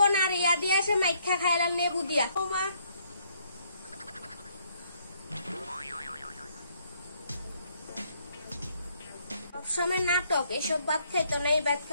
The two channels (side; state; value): both; inverted; correlation -0.69